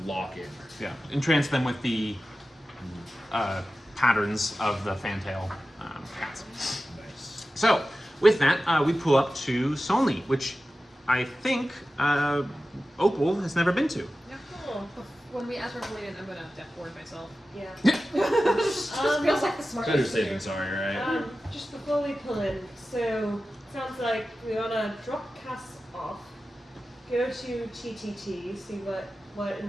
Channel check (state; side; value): normal; both; correlation 0.94